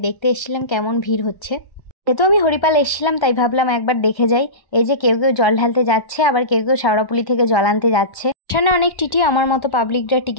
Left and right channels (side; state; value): right; late; 1.1 ms